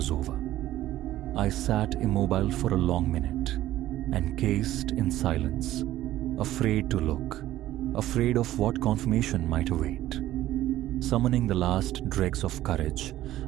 over. I sat immobile for a long minute, encased in silence, afraid to look, afraid of what confirmation might await. Summoning the last dregs of courage,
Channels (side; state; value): left; quieter; 14.3 dB